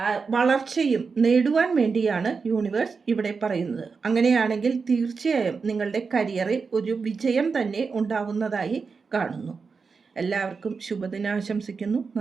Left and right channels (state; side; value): quieter; left; 5.0 dB